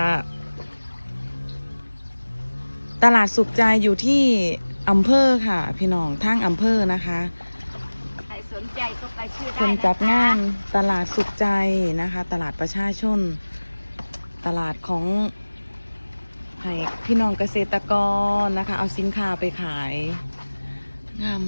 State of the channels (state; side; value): inverted; both; correlation -1.00